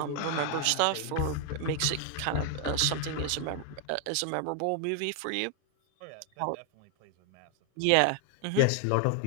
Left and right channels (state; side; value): different; both; correlation 0.00